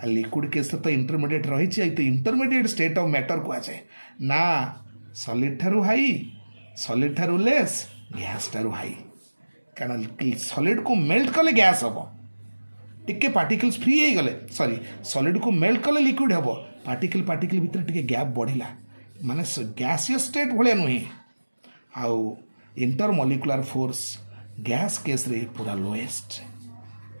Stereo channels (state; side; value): inverted; both; correlation -1.00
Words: liquid case तो इंटरमीडिएट रही तो इंटरमीडिएट स्टेट ऑफ मैटर कहुए ना सॉलिड ठारू हाई सॉलिड ठारू लेस गैस ठारू हाई कारण सॉलिड को मेल्ट कले गैस हम टिके पार्टिकल्स फ्री हो गले सॉरी सॉलिड को मेल्ट कले लिक्विड हम पार्टिकल पार्टिकल भितर टिके गैप बढ़ला माने गैसियस स्टेट भाया नुहे आउ inter molecular force gas case रे पूरा लोएस्ट